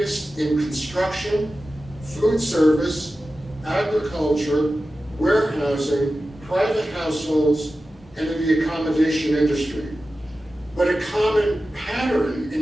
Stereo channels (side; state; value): both; normal; correlation 0.94